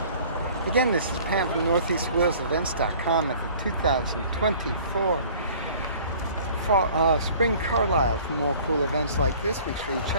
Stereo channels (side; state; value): both; inverted; correlation -0.50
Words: Again, this is Pam from NortheastWalesEvents.com at the 2024 Spring Carlisle. For more cool events like this, make sure you